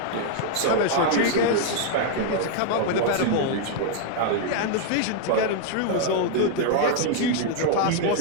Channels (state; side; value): different; both; correlation 0.00